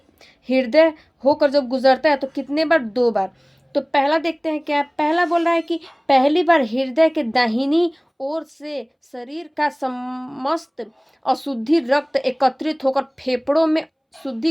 हृदय होकर जब गुजरता है तो कितने बार, 2 बार। तो पहला देखते हैं क्या है। पहला बोल रहा है कि पहली बार हृदय के दाहिनी ओर से शरीर का समस्त अशुद्धि रक्त एकत्रित होकर फेफड़ों में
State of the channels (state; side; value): identical; both; correlation 1.00